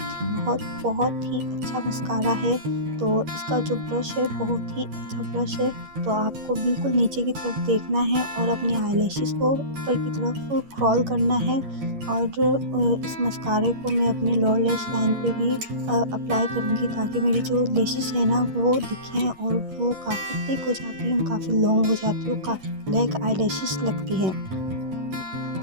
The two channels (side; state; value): left; late; 11 ms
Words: बहुत बहुत ही अच्छा मस्कारा है। तो इसका जो ब्रश है बहुत ही अच्छा ब्रश है। तो आपको बिल्कुल नीचे की तरफ देखना है और अपने आईलैशेस को ऊपर की तरफ क्रॉल करना है। और इस मस्कारे को मैं अपने लोअर लैश लाइन पे भी अप्लाई करूँगी ताकि मेरी जो लैशेस है ना वो दिखें और वो काफ़ी थिक हो जाती हैं, काफ़ी लॉन्ग हो जाती है, काफ़ी ब्लैक आईलैशेस लगती हैं।